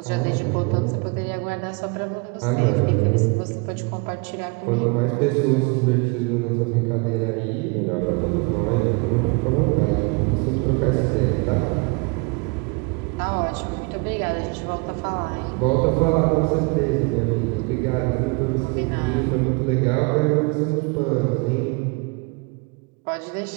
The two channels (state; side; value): quieter; left; 30.4 dB